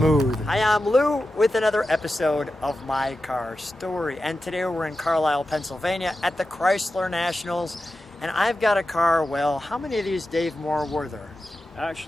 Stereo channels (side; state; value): both; normal; correlation 0.92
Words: Hi, I'm Lou with another episode of My Car Story. And today we're in Carlisle, Pennsylvania at the Chrysler Nationals. And I've got a car, well, how many of these, Dave Moore, were there?